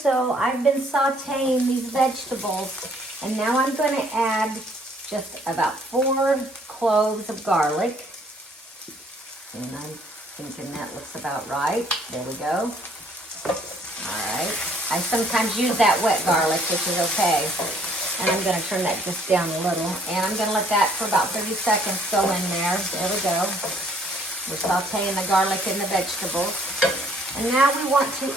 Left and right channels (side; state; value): both; normal; correlation 0.62